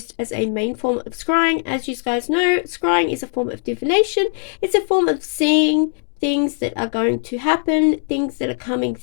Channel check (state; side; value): silent; right; 66 dB below the other